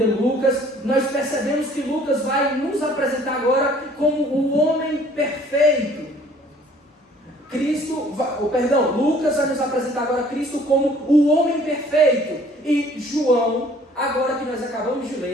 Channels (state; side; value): normal; both; correlation 0.56